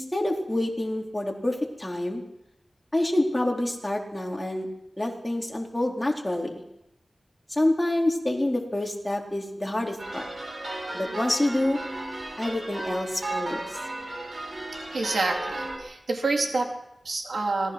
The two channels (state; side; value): normal; both; correlation 0.96